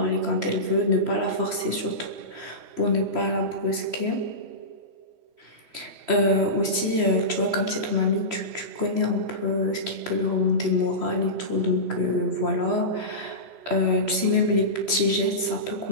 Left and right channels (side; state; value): left; late; 3.0 ms